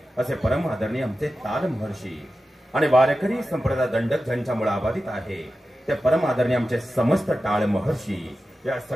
असे परम आदरणीय आमचे ताल महर्षी आणि वारकरी संप्रदाय दंडक ज्यांच्यामुळे आबाधित आहे ते परम आदरणीय आमचे समस्त टाळ महर्षी या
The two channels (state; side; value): normal; both; correlation 0.93